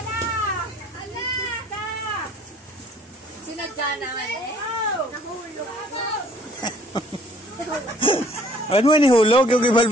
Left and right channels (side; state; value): both; normal; correlation 0.57